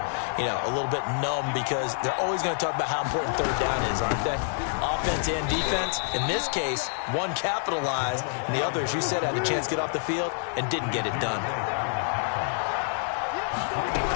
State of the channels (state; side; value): silent; right; digital silence